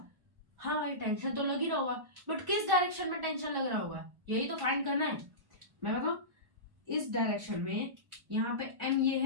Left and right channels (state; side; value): late; left; 1.1 ms